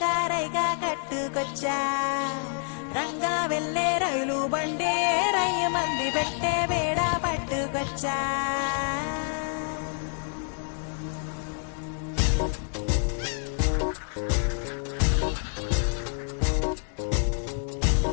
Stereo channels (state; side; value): silent; right; digital silence